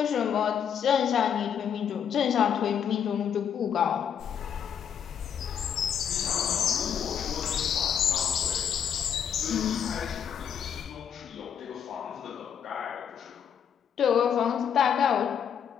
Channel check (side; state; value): right; quieter; 8.2 dB